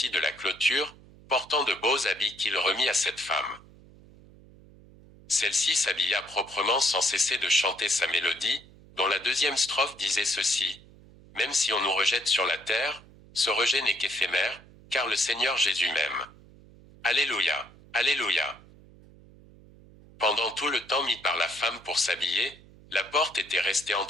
de la clôture, portant de beaux habits qu'il remit à cette femme. Celle-ci s'habilla proprement sans cesser de chanter sa mélodie, dont la deuxième strophe disait ceci. « Même si on nous rejette sur la terre, ce rejet n'est qu'éphémère, car le Seigneur Jésus m'aime. Alléluia, Alléluia. » Pendant tout le temps mis par la femme pour s'habiller, la porte était restée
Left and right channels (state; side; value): noise; right; hum, 23 dB below the sound